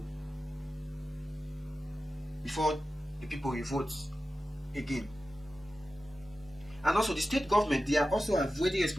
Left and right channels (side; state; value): both; normal; correlation 0.94